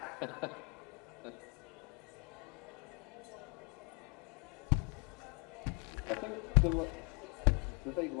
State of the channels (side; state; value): right; quieter; 35.6 dB